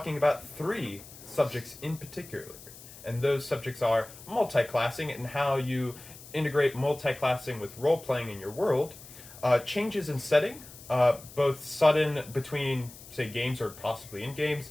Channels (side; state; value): left; noise; hiss, 18 dB below the sound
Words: about three subjects in particular. And those subjects are multi-classing and how you integrate multi-classing with role-playing in your world, changes in setting, both sudden between, say, games or possibly in